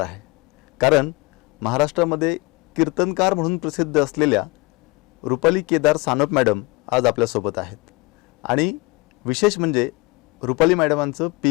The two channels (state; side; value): quieter; right; 25.2 dB